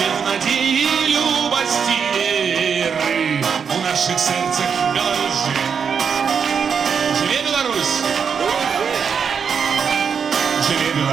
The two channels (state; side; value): quieter; left; 6.6 dB